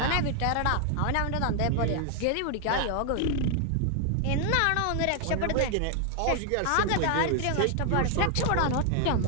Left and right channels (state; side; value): different; both; correlation 0.00